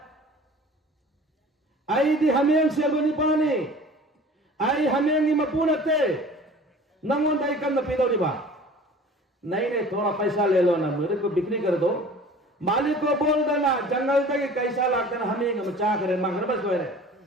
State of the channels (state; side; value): normal; both; correlation 0.44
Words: आई दी हमें से नहीं पानी आई हमें नहीं मपूनते नंगों दाई करना पीदो रिबा नहीं नहीं थोड़ा पैसा ले लो ना मेरे को बिक्री कर दो मालिक को बोल देना जंगल तक कैसा लागता ना हमें मचा करे मांग बस रहे